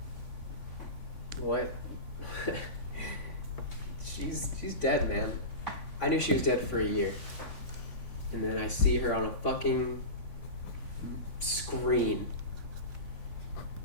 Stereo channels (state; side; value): late; right; 3.5 ms